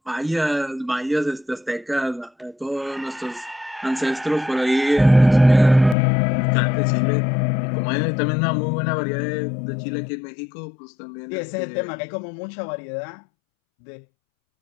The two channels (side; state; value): right; drops out; at 6.0 s